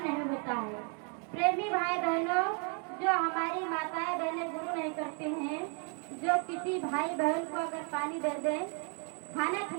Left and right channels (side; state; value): left; quieter; 39.2 dB